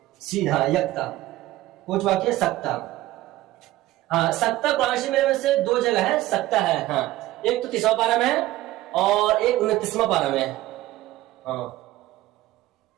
سیدھا یکتا کچھ باقی ہے، سکتا۔ ہاں سکتا قرآن شریف میں سے دو جگہ ہے سکتا ہے، ہاں ایک تو 30واں پارہ میں ہے اور ایک 29واں پارہ میں ہے، ہاں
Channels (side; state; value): left; quieter; 16.3 dB